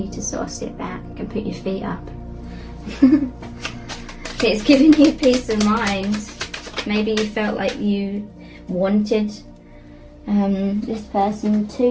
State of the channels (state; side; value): identical; both; correlation 1.00